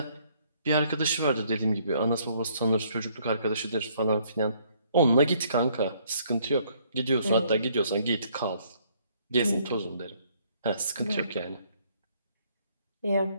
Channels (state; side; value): inverted; both; correlation -0.65